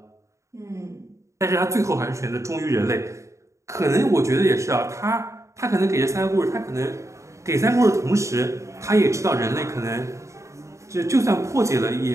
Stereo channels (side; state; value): left; late; 0.14 ms